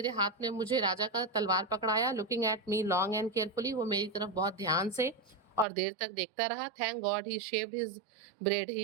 हाथ में मुझे राजा का तलवार पकड़ाया। Looking at me long and carefully, वो मेरी तरफ बहुत ध्यान से और देर तक देखता रहा। Thank God he shaved his bread, he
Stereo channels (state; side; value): drops out; left; at 5.7 s